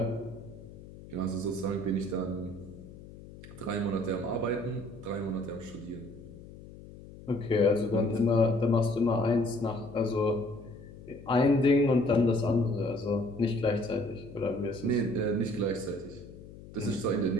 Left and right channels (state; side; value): noise; left; hum, 17 dB below the sound